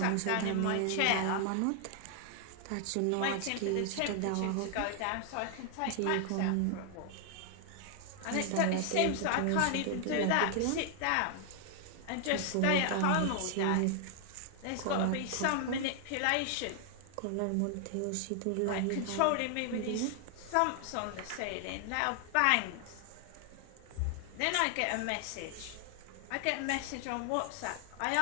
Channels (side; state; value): both; different; correlation 0.00